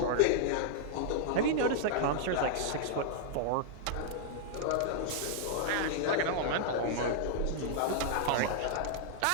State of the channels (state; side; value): different; both; correlation -0.01